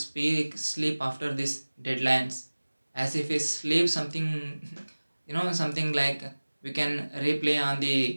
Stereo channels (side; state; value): both; inverted; correlation -1.00